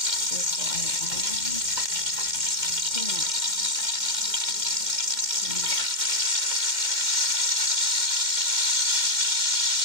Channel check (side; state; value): left; late; 2.1 ms